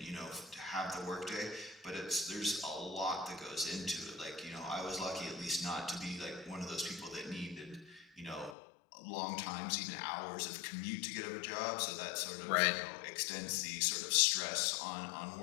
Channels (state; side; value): drops out; right; at 8.6 s